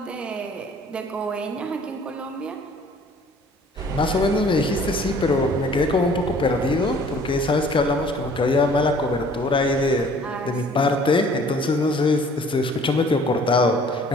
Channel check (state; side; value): normal; both; correlation 0.54